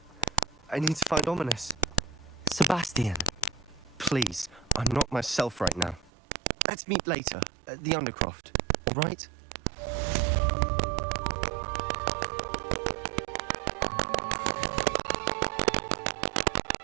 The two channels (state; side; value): drops out; left; at 6.1 s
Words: I need to find Ominous. Sebastian. Please, I'm not myself right now. Let's meet later at the Undercroft, all right?